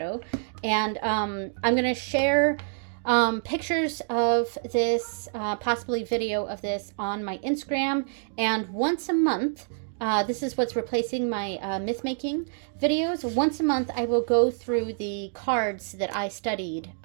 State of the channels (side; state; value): left; silent; digital silence